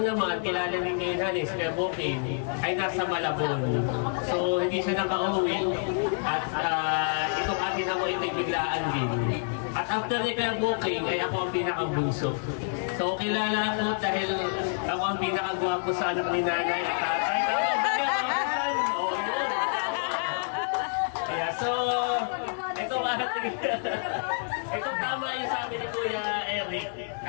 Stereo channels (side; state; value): right; silent; 59 dB below the other